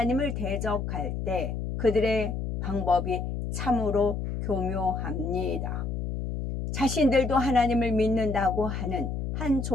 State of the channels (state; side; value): noise; left; hum, 3 dB below the sound